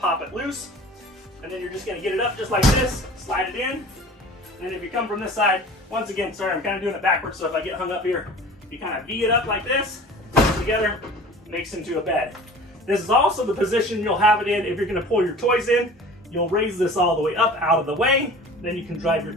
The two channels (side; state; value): both; normal; correlation 0.42